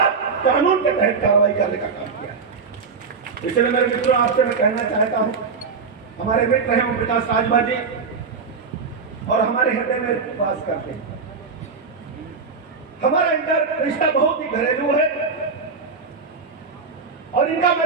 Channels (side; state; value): left; quieter; 5.0 dB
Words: कानून के तहत कार्रवाई करने का काम किया। इसलिए मेरे मित्रों, आपसे मैं कहना चाहता हूं, हमारे मित्र हैं ओम प्रकाश राजभर जी और हमारे हृदय में वास करते हैं। हमारा इनका रिश्ता बहुत ही घरेलू है और इनका